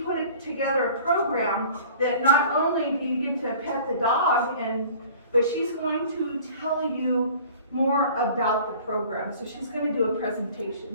put together a program that not only do you get to pet the dog, but she's going to tell you more about the program. So she's going to do a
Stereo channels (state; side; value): inverted; both; correlation -0.47